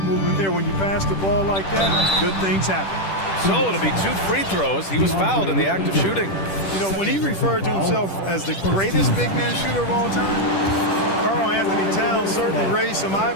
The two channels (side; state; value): right; late; 10 ms